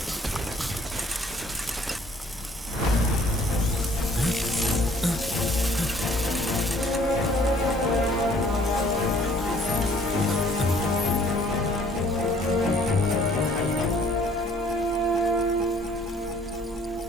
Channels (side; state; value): both; normal; correlation 0.58